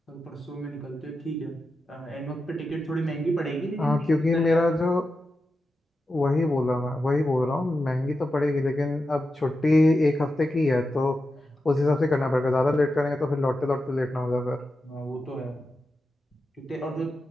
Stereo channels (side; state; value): both; normal; correlation 0.90